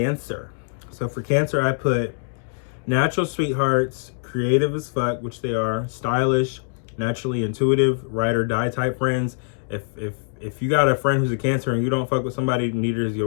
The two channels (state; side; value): silent; right; digital silence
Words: So for Cancer, I put natural sweethearts, creative as fuck, which they are, stylish, naturally intuitive, ride or die type friends. If you got a friend who's a Cancer and you don't fuck with somebody, neither is